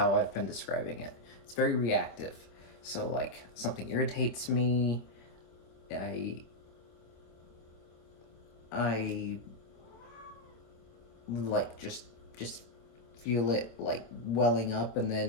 I've been describing it. It's very reactive. So something irritates me, I just feel it welling up, and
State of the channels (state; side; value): late; right; 26 ms